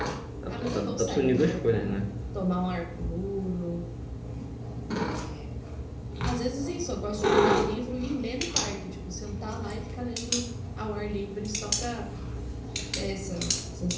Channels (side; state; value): both; identical; correlation 1.00